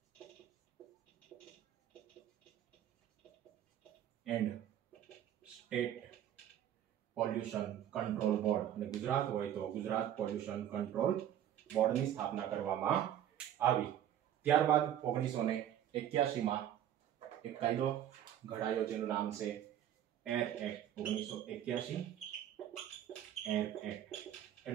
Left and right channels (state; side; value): quieter; left; 10.9 dB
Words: And state pollution control board. અને ગુજરાત હોય તો ગુજરાત પોલ્યુશન કંટ્રોલ બોર્ડની સ્થાપના કરવામાં આવી. ત્યારબાદ 1981માં એક કાયદો ઘડાયો જેનું નામ છે એર એક્ટ. 1981 એર એક્ટ